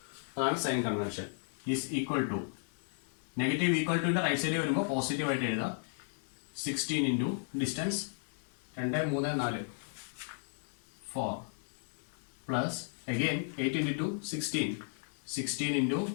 അതാണ് sign convention. Is equal to, negative equal ടുവിന്റെ റൈറ്റ് സൈഡിൽ വരുമ്പോൾ പോസിറ്റീവ് ആയിട്ട് എഴുതാം. 16 into distance 2 3 4 4 plus again 8 into 2 16, 16 into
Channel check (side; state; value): right; silent; digital silence